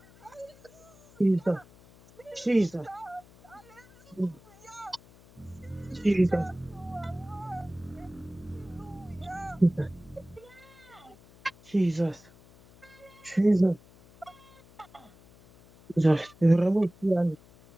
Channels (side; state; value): left; noise; hum, 25 dB below the sound